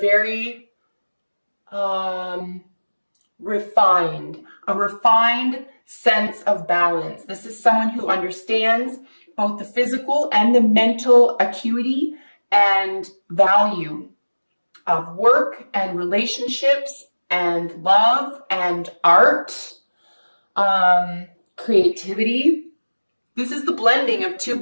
refined sense of balance. This is someone who understands both the physical and the mental acuity and value of work and relationships and love and art, creativity. This is the blending of two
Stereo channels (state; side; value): inverted; both; correlation -1.00